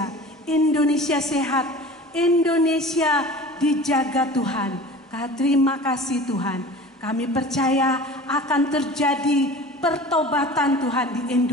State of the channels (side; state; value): both; normal; correlation 0.40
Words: Indonesia sehat, Indonesia dijaga Tuhan. Terima kasih Tuhan. Kami percaya akan terjadi pertobatan Tuhan di